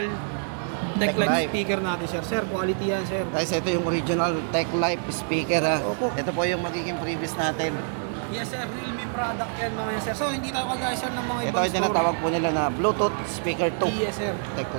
Tech Techline Life. speaker natin, sir. Sir, quality yan, sir. Guys, ito yung original Tech Life speaker ha. Opo. Ito po yung magiging previous natin. Yes, sir. Realme product yan, mga yan, sir. So, hindi tayo kagaya, sir, ng mga Ito ibang yung tinatawag po nila na Bluetooth speaker 2 Yes, sir. Tech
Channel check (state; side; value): silent; left; digital silence